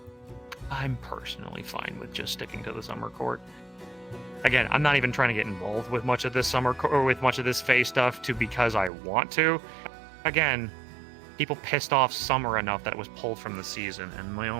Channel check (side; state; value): left; drops out; at 8.9 s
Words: I'm personally fine with just sticking to the summer court. Again, I'm not even trying to get involved with much of this or with much of this Fae stuff because I want to. Again, people pissed off Summer enough that it was pulled from the season, and my